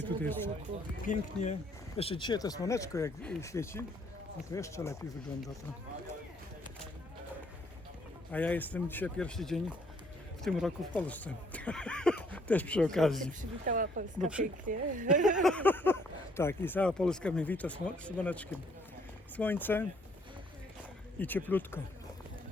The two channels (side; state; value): both; normal; correlation 0.65